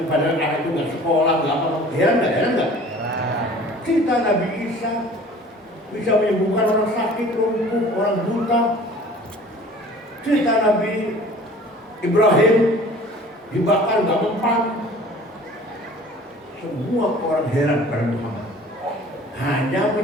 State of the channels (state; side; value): normal; both; correlation 0.47